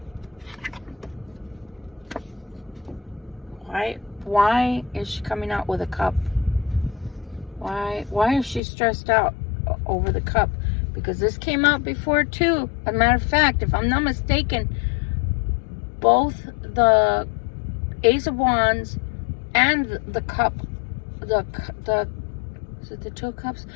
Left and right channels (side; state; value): right; drops out; at 8.6 s